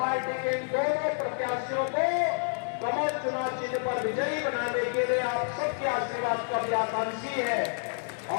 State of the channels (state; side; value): silent; right; 59 dB below the other